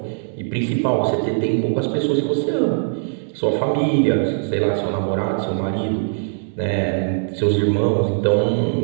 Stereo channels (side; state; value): left; silent; digital silence